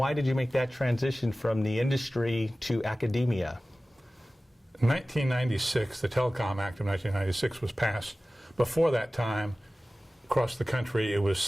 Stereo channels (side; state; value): both; normal; correlation 0.97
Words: did you make that transition from the industry to academia? In 1996, the Telecom Act of 1996 was passed. Before that time, across the country, it was